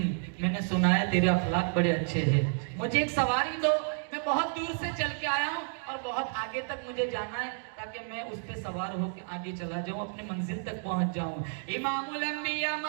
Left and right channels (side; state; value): left; silent; 57 dB below the other